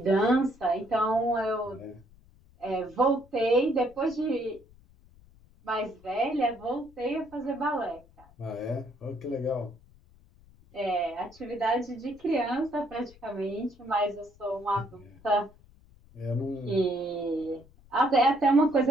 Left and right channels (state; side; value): noise; left; rumble, 26 dB below the sound